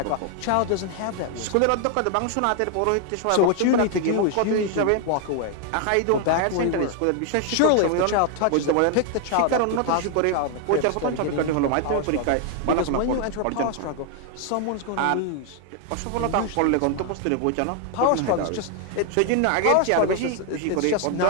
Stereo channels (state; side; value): different; both; correlation 0.00